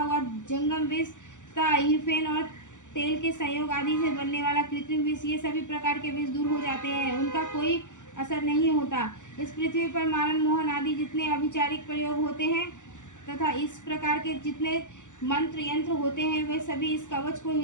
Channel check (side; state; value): right; late; 0.86 ms